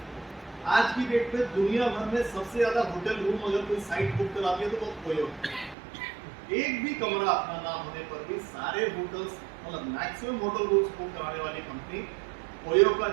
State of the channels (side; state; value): left; drops out; at 5.8 s